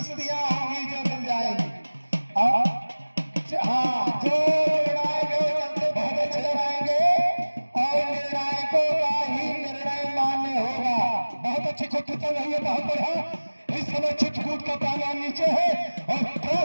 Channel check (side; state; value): both; inverted; correlation -1.00